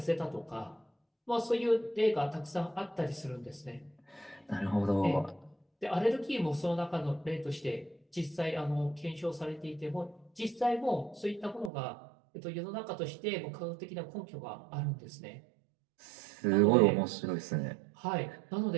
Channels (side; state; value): left; drops out; at 11.7 s